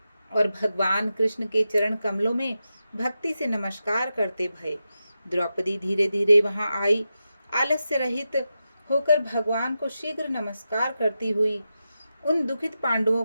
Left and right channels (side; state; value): both; inverted; correlation -0.89